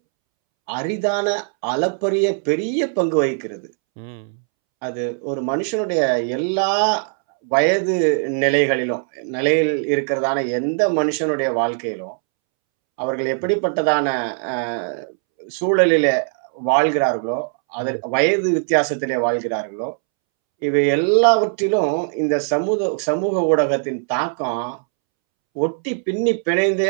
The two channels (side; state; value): left; silent; 66 dB below the other